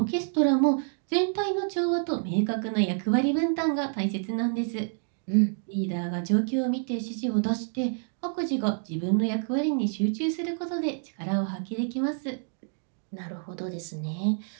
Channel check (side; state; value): left; silent; 59 dB below the other